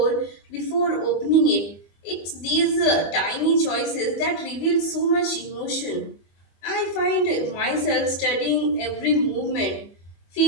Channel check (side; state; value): right; late; 25 ms